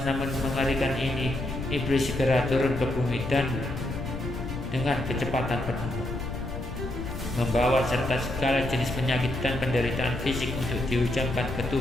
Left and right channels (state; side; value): noise; left; rumble, 6 dB below the sound